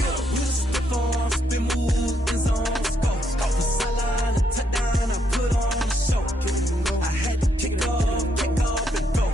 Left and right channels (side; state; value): both; normal; correlation 0.76